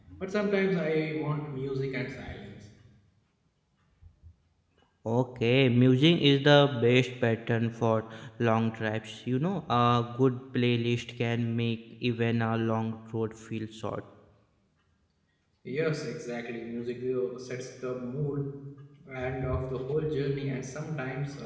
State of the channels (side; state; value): both; identical; correlation 1.00